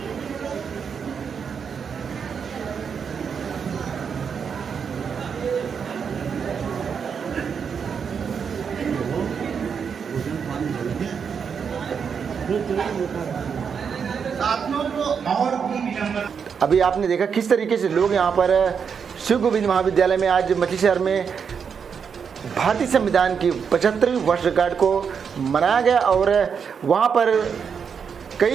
साथियों को और भी विडंबना। अभी आपने देखा किस तरीके से लोग यहाँ पर शिव गोविंद महाविद्यालय में आज मछली शहर में भारतीय संविधान की 75वीं वर्षगांठ को मनाया गया और वहाँ पर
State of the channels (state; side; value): quieter; left; 6.6 dB